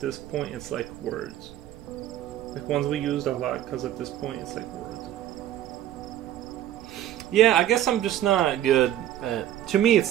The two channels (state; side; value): quieter; left; 12.3 dB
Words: point it's like words. Like ones we used a lot because at this point it's like words. Yeah, I guess I'm just not good at... To me,